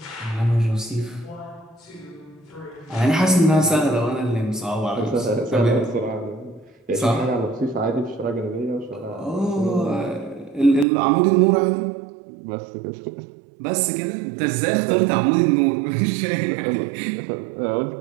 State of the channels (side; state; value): left; drops out; at 10.9 s